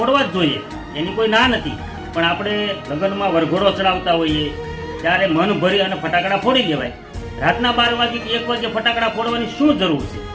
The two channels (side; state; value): both; identical; correlation 1.00